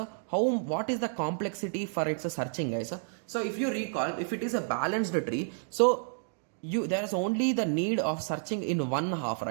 what is the complexity for its searching guys? So if you recall, if it is a balanced tree, so there is only the need of searching in one half,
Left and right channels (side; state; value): left; silent; digital silence